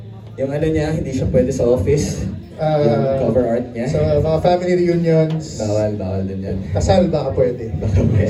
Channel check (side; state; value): both; identical; correlation 1.00